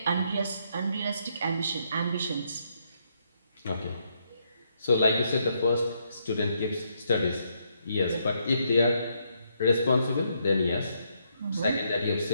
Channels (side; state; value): both; inverted; correlation -0.75